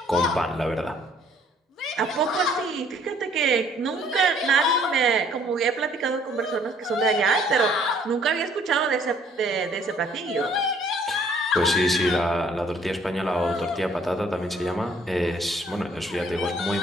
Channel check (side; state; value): both; normal; correlation 0.60